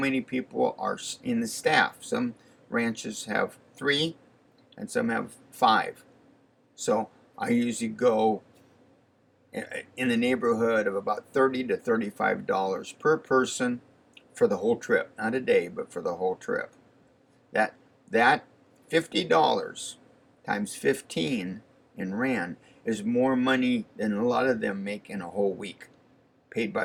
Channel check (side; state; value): both; identical; correlation 1.00